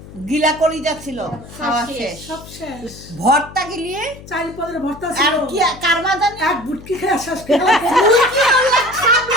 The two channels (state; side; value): noise; left; hum, 17 dB below the sound